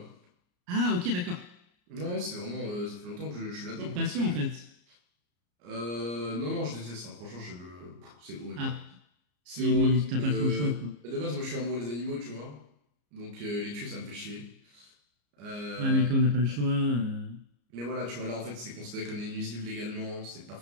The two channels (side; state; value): left; late; 34 ms